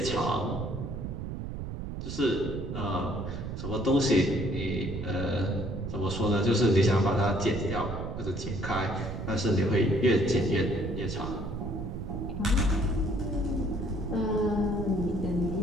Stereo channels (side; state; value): right; noise; rumble, 6 dB below the sound